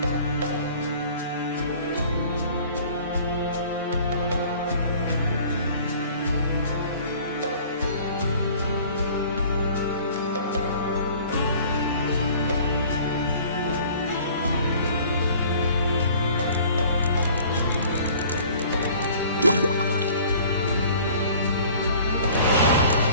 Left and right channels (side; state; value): both; inverted; correlation -0.50